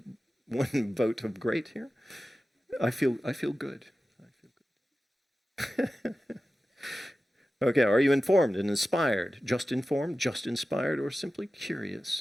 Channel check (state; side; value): normal; both; correlation 0.94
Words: vote of great here. I feel good. Okay, are you informed and inspired? Just informed, just inspired, or simply